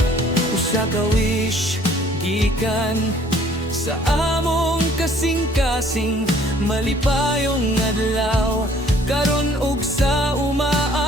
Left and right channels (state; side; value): normal; both; correlation 0.58